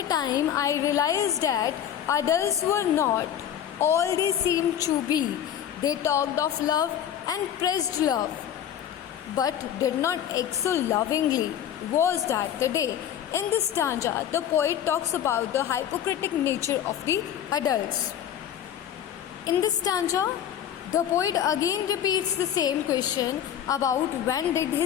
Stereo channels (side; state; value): right; quieter; 10.0 dB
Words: time I realized that adults were not all they seemed to be? They talked of love and praised love, but did not exhale lovingly. Was that the day? In this stanza, the poet talks about the hypocritical nature of the adults. In this stanza, the poet again repeats the same question about when did